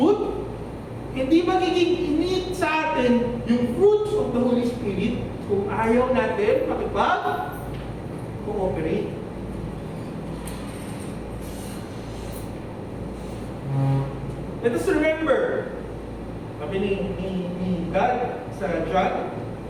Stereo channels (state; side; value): identical; both; correlation 1.00